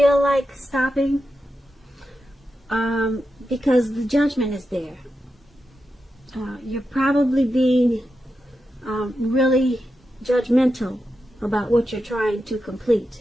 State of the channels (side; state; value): both; normal; correlation 0.89